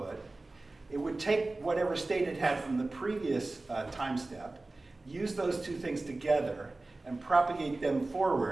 it would take whatever state it had from the previous time step, use those two things together, and propagate them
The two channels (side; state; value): left; quieter; 3.1 dB